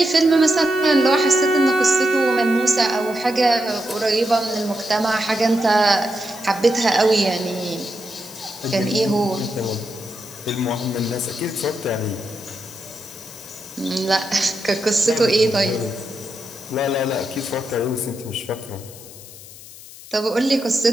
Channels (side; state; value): left; noise; hiss, 17 dB below the sound